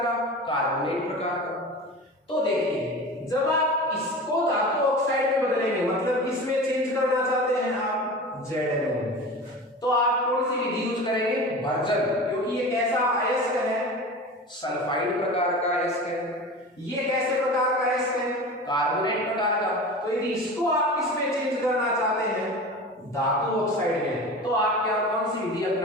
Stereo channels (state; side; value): normal; both; correlation 0.33